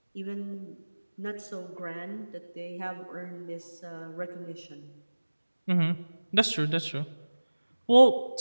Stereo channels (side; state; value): both; inverted; correlation -1.00